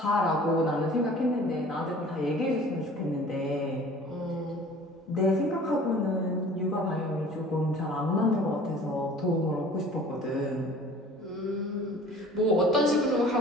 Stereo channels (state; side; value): normal; both; correlation 0.47